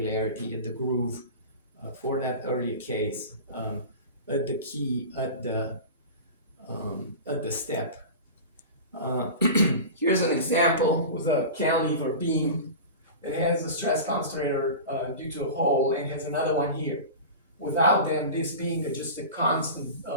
at the groove for that earlier case, at the key, at the step. Here's an example with a cantilever beam that has a stress concentrator due to a hole, and has another one here. Without them, this being just a constant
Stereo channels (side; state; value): both; inverted; correlation -0.31